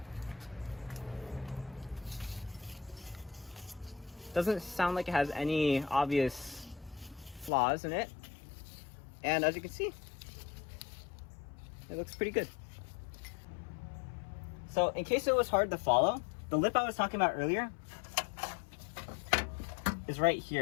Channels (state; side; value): drops out; right; at 7.5 s